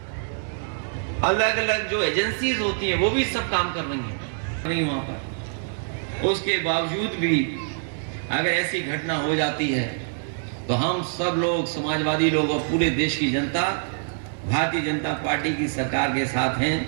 अलग अलग जो एजेंसीज होती हैं वो भी सब काम कर रही हैं नहीं वहां पर। उसके बावजूद भी अगर ऐसी घटना हो जाती है तो हम सब लोग, समाजवादी लोग और पूरे देश की जनता भारतीय जनता पार्टी की सरकार के साथ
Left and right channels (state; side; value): silent; left; digital silence